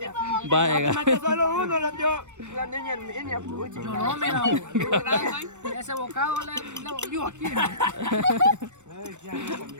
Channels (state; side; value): late; left; 0.84 ms